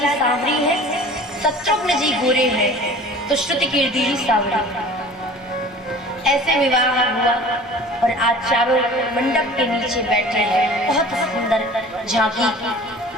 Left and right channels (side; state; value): both; normal; correlation 0.44